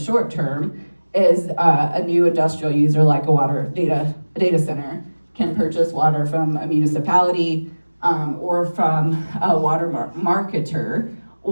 term, is a new industrial user like a data center can purchase water from a municipality or from a water marketer,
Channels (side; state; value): both; inverted; correlation -1.00